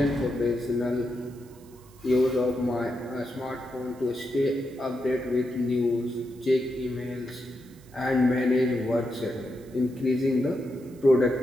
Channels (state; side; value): noise; right; hiss, 27 dB below the sound